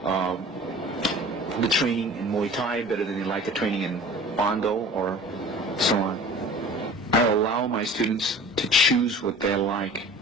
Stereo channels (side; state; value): both; normal; correlation 0.43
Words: the training in Muay Thai better than they like the training in Bondo or so on? I allow my students to choose what they like,